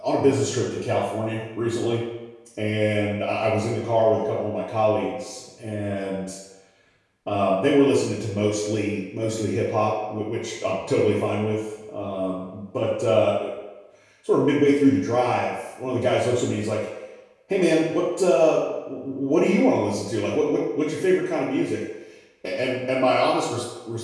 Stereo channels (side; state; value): both; identical; correlation 1.00